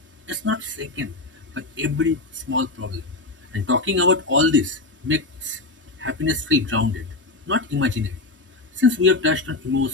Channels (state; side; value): quieter; right; 3.3 dB